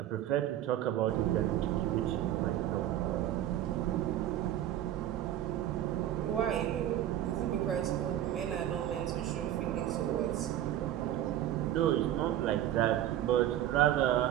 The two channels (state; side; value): quieter; left; 12.2 dB